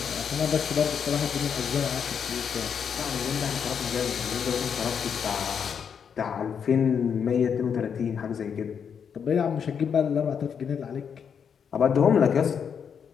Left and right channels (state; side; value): quieter; right; 7.2 dB